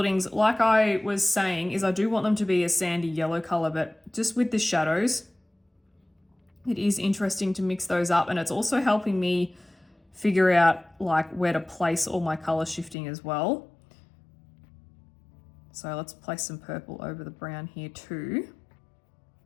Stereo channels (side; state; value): right; drops out; at 13.0 s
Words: like I was saying, is I do want them to be a sandy yellow color, but just with the shadows, it is interesting to mix those up, and it's also helping me figure out like where to place all my color shifting as well. So let's place some purple over the brown here too.